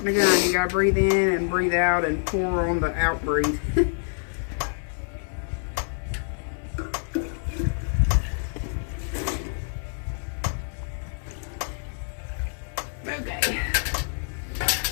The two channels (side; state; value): right; silent; 61 dB below the other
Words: a gun. You gotta breathe in and breathe out and pour on the out breathe. Okay.